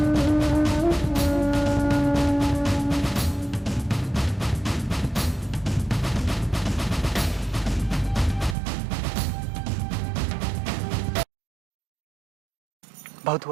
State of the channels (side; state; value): left; drops out; at 8.6 s